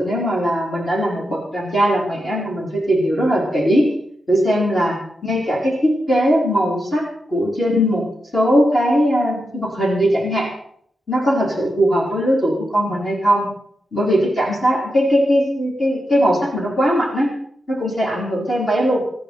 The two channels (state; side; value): normal; both; correlation 0.87